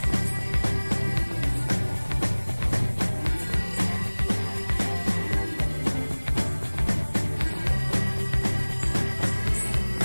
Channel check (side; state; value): both; inverted; correlation -1.00